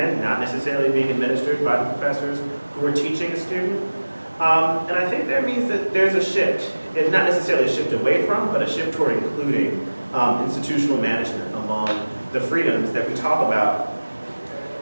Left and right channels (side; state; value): both; inverted; correlation -1.00